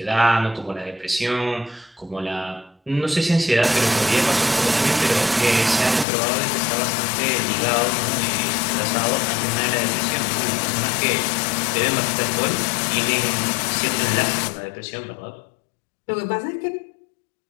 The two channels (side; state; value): right; drops out; at 6.1 s